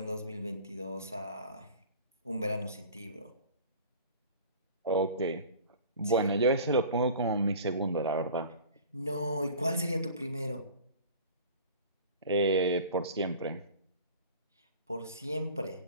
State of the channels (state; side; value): inverted; both; correlation -0.42